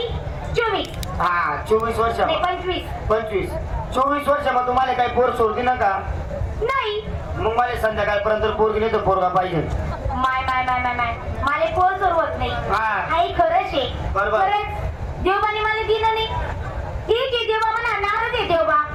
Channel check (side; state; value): both; identical; correlation 1.00